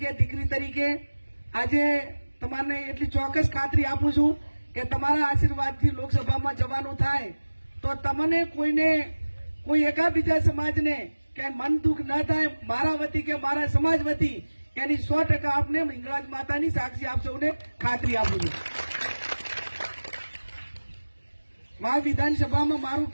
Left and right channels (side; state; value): both; inverted; correlation -1.00